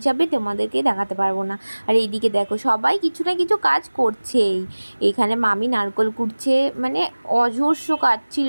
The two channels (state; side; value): inverted; both; correlation -1.00